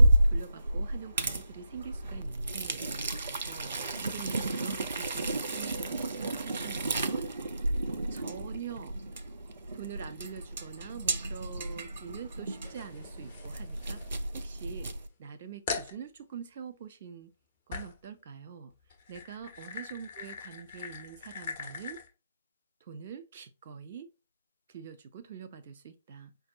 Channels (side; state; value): both; inverted; correlation -0.83